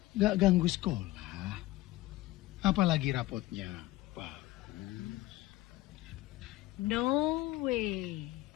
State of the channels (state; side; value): quieter; right; 17.4 dB